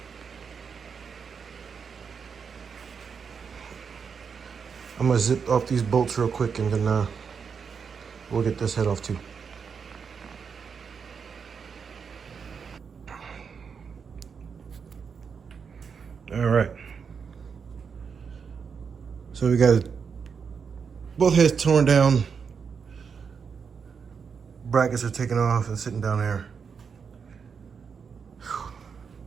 I'm gonna zip off these bolts real quick and then we'll get this head off too. All right. So we got both heads torn down. Brackets are taken off and sitting down there.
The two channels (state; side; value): quieter; left; 6.2 dB